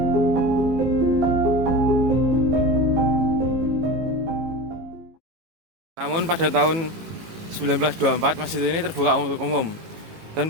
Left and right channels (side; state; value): left; late; 18 ms